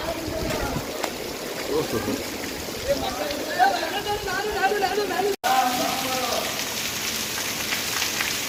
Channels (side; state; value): both; identical; correlation 1.00